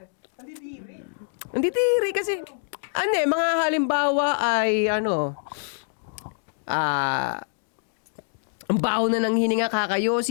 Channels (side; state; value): right; silent; digital silence